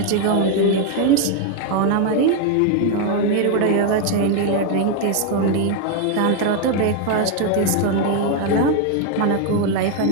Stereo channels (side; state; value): both; different; correlation 0.01